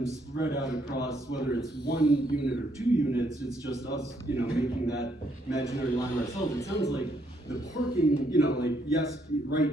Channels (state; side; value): normal; both; correlation 0.72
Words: spread out across, whether it's 1 unit or 2 units, it's just us, making that imaginary line ourselves. It sounds like the parking, like, yes, right